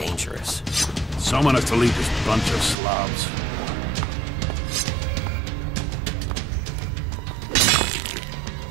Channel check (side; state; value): left; drops out; at 2.8 s